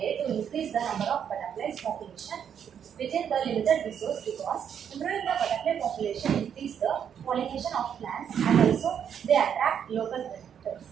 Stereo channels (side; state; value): left; quieter; 8.3 dB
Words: to increase the number of butterflies population within the limited resource, because improving the butterfly population increase the pollination of plants and also they attract local predators.